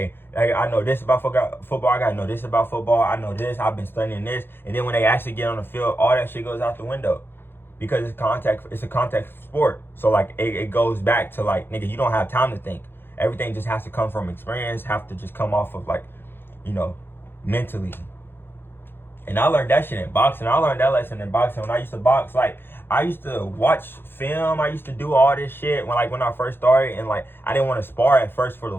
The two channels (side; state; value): right; late; 0.10 ms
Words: I know this about football, I gotta know this about football, I know this, I've been studying this, and then when they actually get on the field, all that shit goes out the window. Because it's a contact sport. So like it goes back to like, nigga, you don't have time to think. Everything just has to come from experience, have to just come off of like, mentally. And I learned that shit in boxing. I learned that lesson in boxing when I used to box. Like, I used to watch film. I used to do all this shit when I first started. And like, I didn't want to spar at first for the